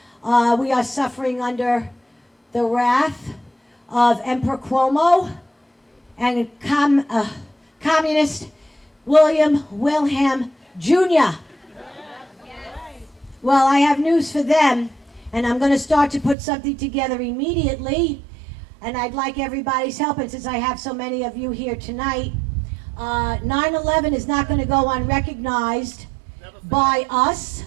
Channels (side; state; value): left; drops out; at 16.4 s